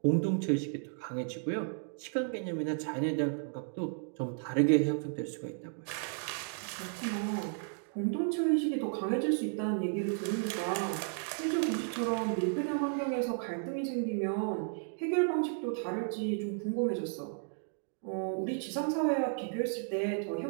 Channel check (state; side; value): silent; left; digital silence